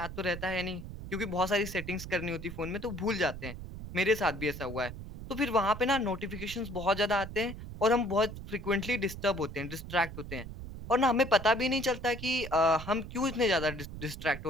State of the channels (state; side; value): noise; right; rumble, 11 dB below the sound